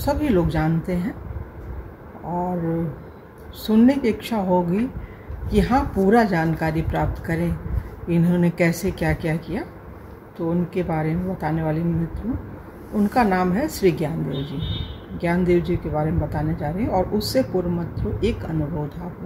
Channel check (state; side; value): identical; both; correlation 1.00